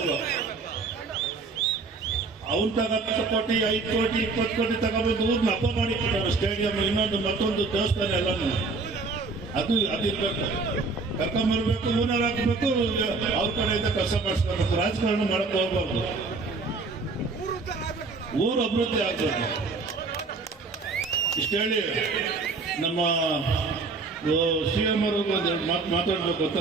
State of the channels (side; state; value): left; quieter; 4.0 dB